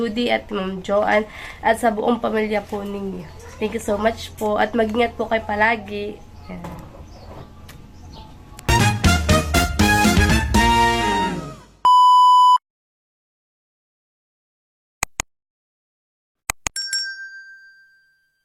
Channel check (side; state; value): both; identical; correlation 1.00